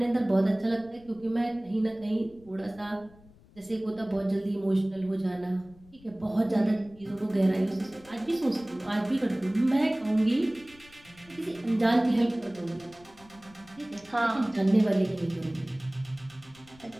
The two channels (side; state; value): left; noise; rumble, 25 dB below the sound